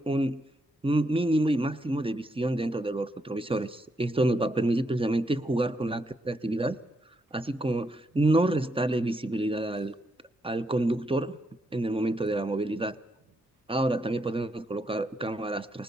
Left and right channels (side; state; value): both; normal; correlation 0.79